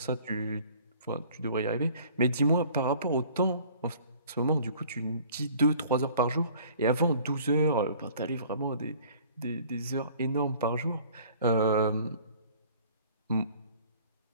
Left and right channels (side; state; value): both; inverted; correlation -0.51